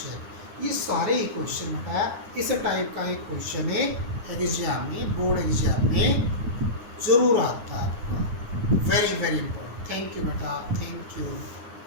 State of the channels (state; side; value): late; left; 9.7 ms